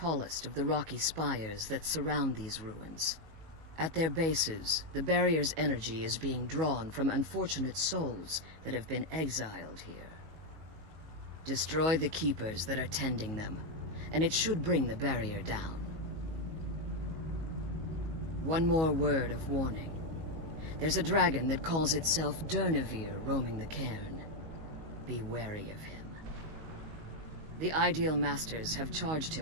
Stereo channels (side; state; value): left; late; 19 ms